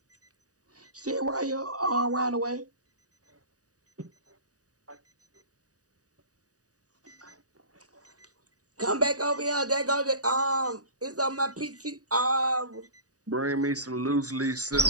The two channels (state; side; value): late; left; 0.67 ms